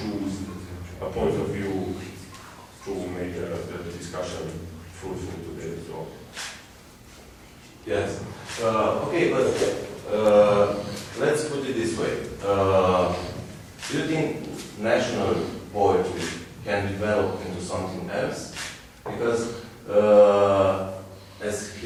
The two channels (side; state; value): both; identical; correlation 1.00